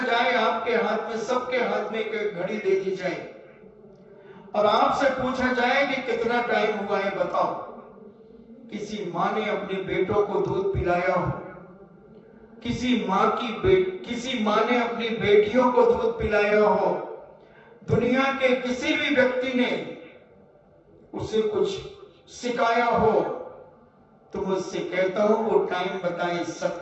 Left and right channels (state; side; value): identical; both; correlation 1.00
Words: जाए, आपके हाथ में, सबके हाथ में एक घड़ी दे दी जाए और आपसे पूछा जाए कि कितना टाइम हुआ है बताओ। किसी माँ ने अपने बेटों को दूध पिलाया हो, किसी माँ ने अपनी बेटियों को दूध पिलाया हो, दुनिया के किसी भी व्यक्ति ने उसे कुछ सिखाया हो, तो मुझसे कहता हूं वो टाइम बताए,